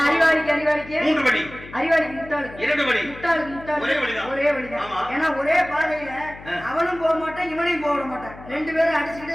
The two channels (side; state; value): left; noise; hum, 17 dB below the sound